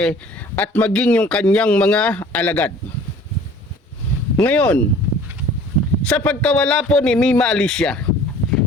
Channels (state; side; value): normal; both; correlation 0.49